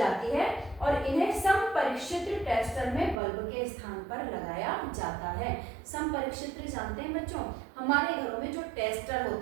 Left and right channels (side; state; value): left; drops out; at 3.2 s